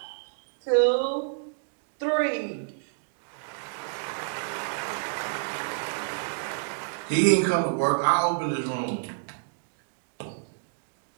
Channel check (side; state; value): left; silent; digital silence